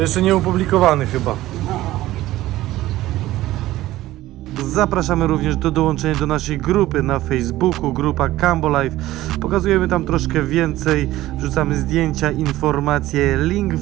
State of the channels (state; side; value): quieter; left; 15.9 dB